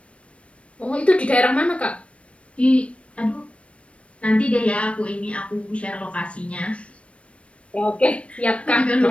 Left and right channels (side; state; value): right; late; 0.062 ms